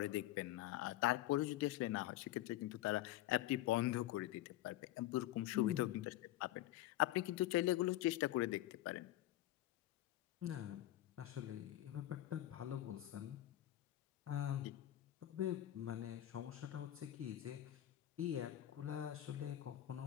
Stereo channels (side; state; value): right; quieter; 14.5 dB